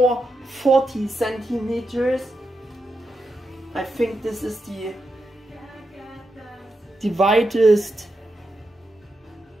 40 centimeters. I think this is the widest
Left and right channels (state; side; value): normal; both; correlation 0.86